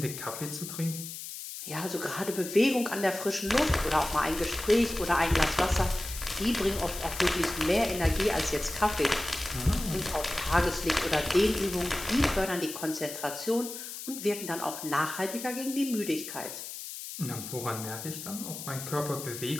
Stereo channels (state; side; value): noise; left; hiss, 9 dB below the sound